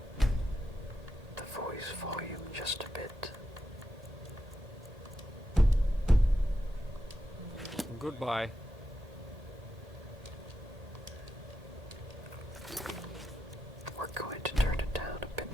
the voice volume just a bit. Goodbye. We're going to turn it down a bit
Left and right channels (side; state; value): both; normal; correlation 0.87